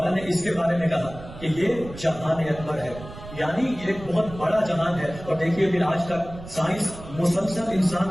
نے اس کے بارے میں کہا کہ یہ جہان اکبر ہے، یعنی یہ ایک بہت بڑا جہان ہے۔ اور دیکھیے پھر آج تک سائنس مسلسل انسان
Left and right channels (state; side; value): noise; right; rumble, 14 dB below the sound